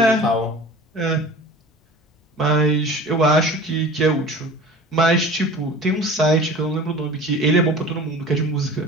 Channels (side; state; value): both; normal; correlation 0.40